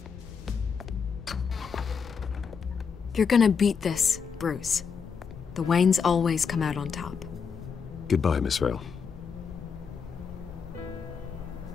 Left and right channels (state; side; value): quieter; right; 6.1 dB